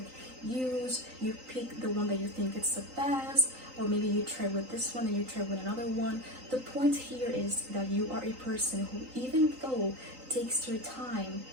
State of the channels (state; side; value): late; left; 3.9 ms